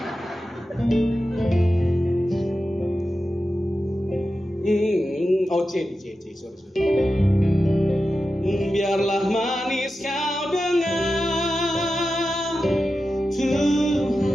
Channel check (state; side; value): normal; both; correlation 0.92